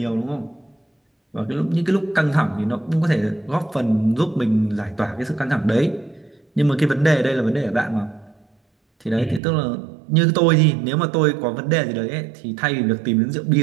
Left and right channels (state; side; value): drops out; left; at 9.4 s